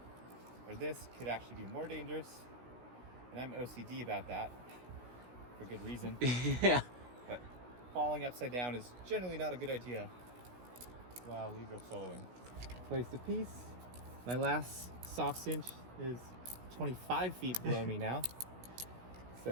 Or this could actually be more dangerous. And I'm OCD about that, for good reason. Yeah. But falling upside down is generally not a good idea while lead rope soloing. Place the piece. My last soft cinch is 25 feet below me now.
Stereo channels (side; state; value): left; late; 16 ms